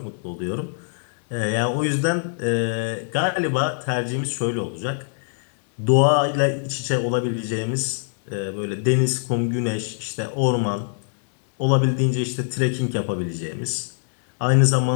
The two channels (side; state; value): right; silent; digital silence